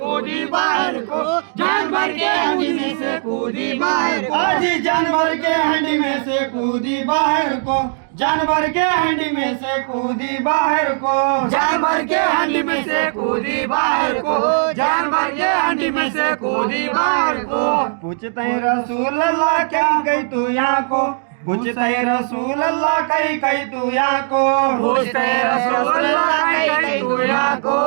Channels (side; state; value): left; silent; digital silence